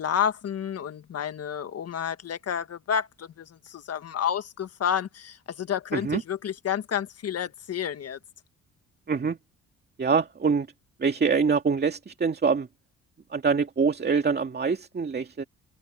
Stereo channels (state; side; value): normal; both; correlation 0.14